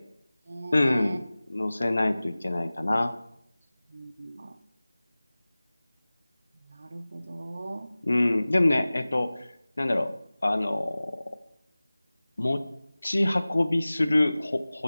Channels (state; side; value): inverted; both; correlation -0.98